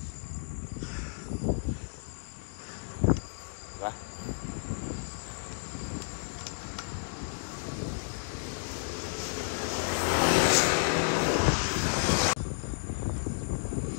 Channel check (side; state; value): right; silent; digital silence